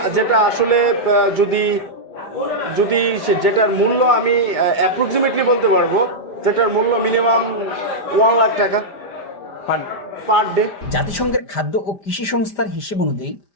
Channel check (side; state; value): right; late; 5.1 ms